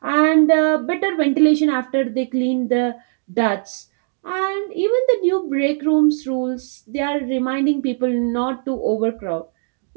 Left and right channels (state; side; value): silent; left; 56 dB below the other